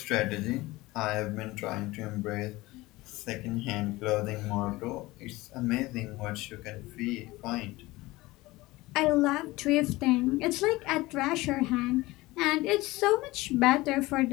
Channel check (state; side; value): quieter; right; 20.0 dB